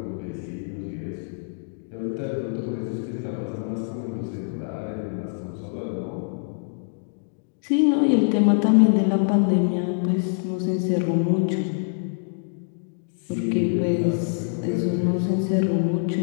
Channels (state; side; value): silent; right; digital silence